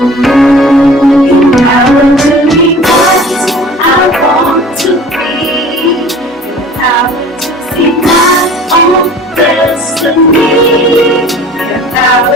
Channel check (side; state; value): both; normal; correlation 0.45